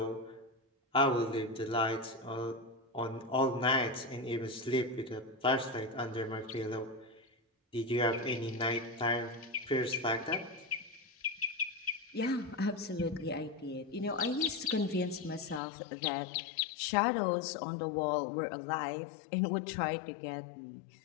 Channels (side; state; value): right; drops out; at 15.6 s